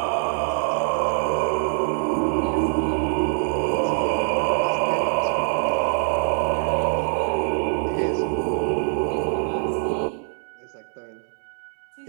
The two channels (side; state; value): left; silent; digital silence